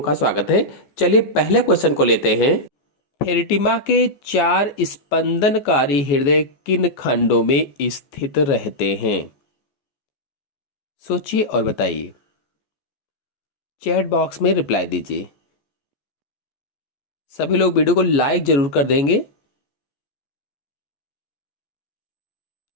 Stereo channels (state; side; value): late; right; 14 ms